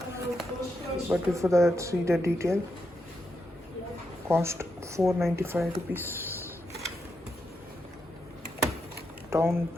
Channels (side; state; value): both; normal; correlation 0.83